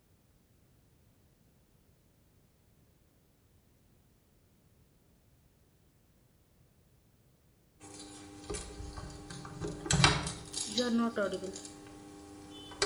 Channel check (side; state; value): both; identical; correlation 1.00